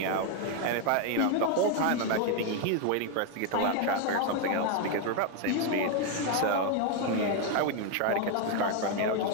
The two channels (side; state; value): both; different; correlation 0.01